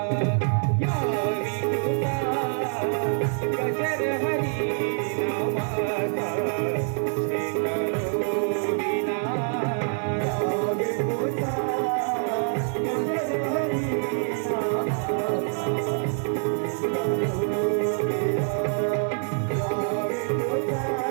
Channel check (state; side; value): silent; left; 56 dB below the other